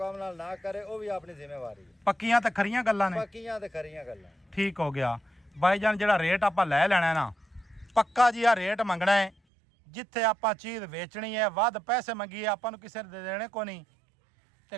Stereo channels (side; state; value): left; drops out; at 9.3 s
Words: ਨਾਲ ਨਾ ਕਰੇ ਉਹ ਵੀ ਆਪਣੀ ਜ਼ਿੰਮੇਵਾਰੀ ਹੈ। ਪੱਕੀਆਂ ਤੇ ਖਰੀਆਂ ਗੱਲਾਂ ਨੇ। ਪੱਕੀਆਂ ਤੇ ਖਰੀਆਂ ਗੱਲਾਂ। ਠੀਕ ਹੋ ਗਿਆ ਭਾਈਜਾਨ। ਜਿਹੜਾ ਰੇਟ ਆਪਾਂ ਲੈ ਲੈਣਾ ਨਾ ਪੱਕਾ ਜੀ ਆ ਰੇਟ ਮੰਗਣਾ ਹੈ। ਜਿੱਥੇ ਆਪਾਂ ਚੀਜ਼ ਵੇਚਣੀ ਹੈ ਵੱਧ ਪੈਸੇ ਮੰਗੀਏ ਆਪਾਂ ਨੂੰ ਕਿਸੇ ਨੇ ਦੇਣੇ ਕੋ ਨਹੀਂ ਤੇ